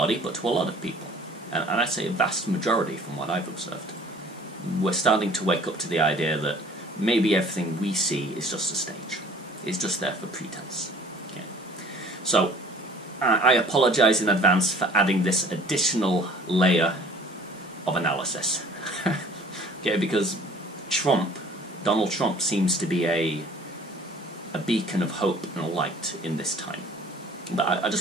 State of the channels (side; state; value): both; normal; correlation 0.51